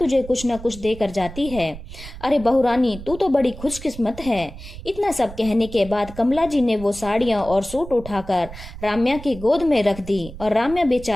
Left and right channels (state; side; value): noise; right; rumble, 14 dB below the sound